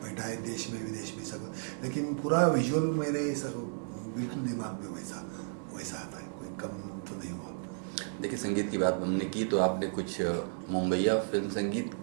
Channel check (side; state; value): left; silent; digital silence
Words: बैठा है देश में विदेश में सब, लेकिन पूरा विजुअल मेरे बिल्कुल दिमाग में वैसा आता है, कोई कम तो नहीं हुआ। देखिए, संगीत की बात हमने की तो आपने कुछ मुंबईया फिल्म संगीत